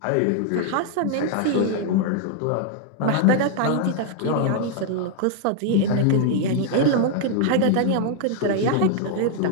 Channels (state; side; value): different; both; correlation 0.00